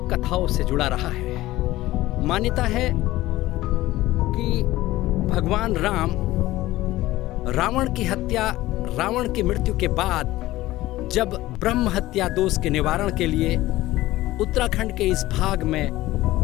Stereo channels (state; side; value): quieter; right; 16.9 dB